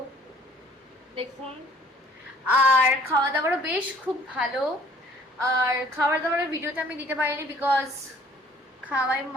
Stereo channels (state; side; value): normal; both; correlation 0.56